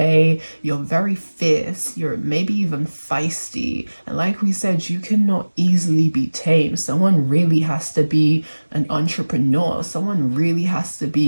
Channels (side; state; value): both; inverted; correlation -1.00